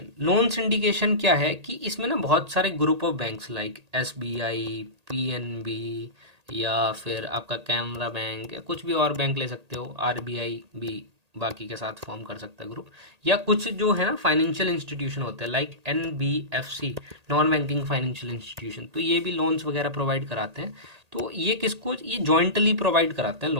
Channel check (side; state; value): left; late; 1.8 ms